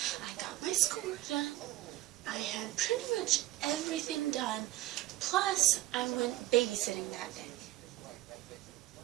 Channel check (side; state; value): left; quieter; 16.3 dB